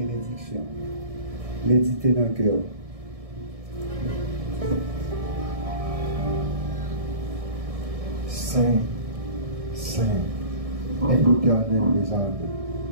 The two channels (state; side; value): late; left; 1.6 ms